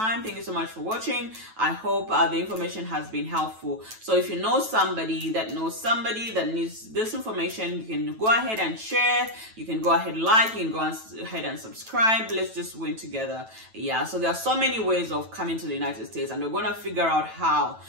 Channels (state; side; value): late; left; 9.1 ms